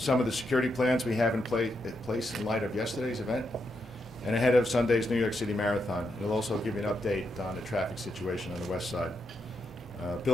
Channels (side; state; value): both; normal; correlation 0.82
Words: of the security plans we have in place in light of yesterday's event and ahead of Sunday's New York City Marathon. He'll also give you an update on the traffic situation on the west side.